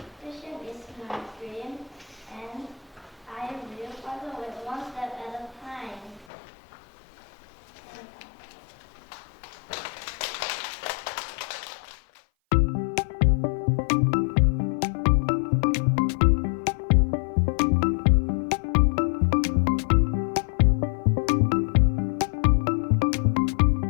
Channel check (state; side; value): drops out; right; at 6.2 s